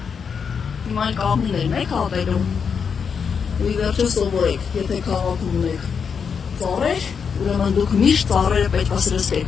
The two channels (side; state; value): right; quieter; 6.4 dB